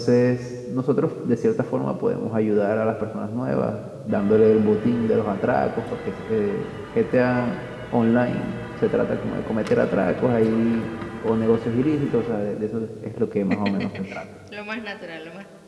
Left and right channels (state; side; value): identical; both; correlation 1.00